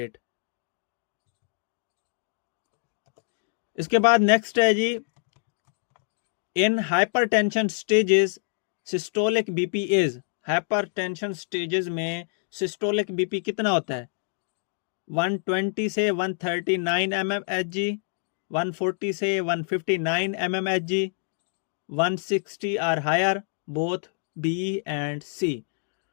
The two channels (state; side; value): silent; right; 60 dB below the other